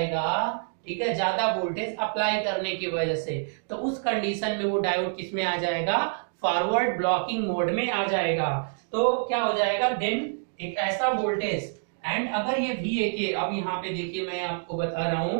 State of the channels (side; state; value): left; silent; digital silence